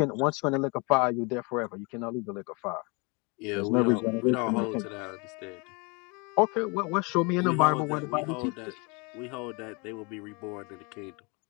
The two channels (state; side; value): quieter; right; 30.5 dB